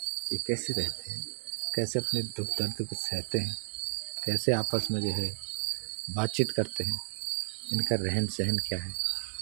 ये कैसे रहते हैं, कैसे अपने दुख दर्द को सहते हैं, कैसे आपस में जो है बातचीत करते हैं, इनका रहन सहन क्या है।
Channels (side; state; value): left; silent; digital silence